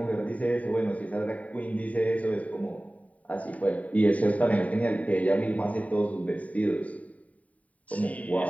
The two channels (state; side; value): late; right; 0.069 ms